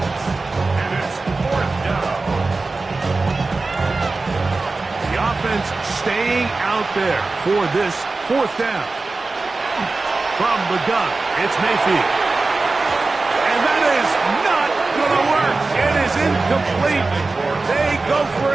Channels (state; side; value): quieter; left; 3.6 dB